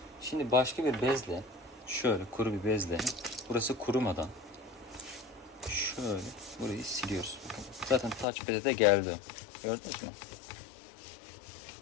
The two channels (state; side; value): drops out; right; at 8.2 s